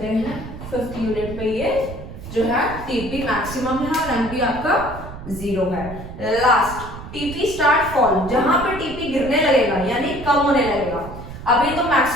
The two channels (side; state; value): right; noise; rumble, 11 dB below the sound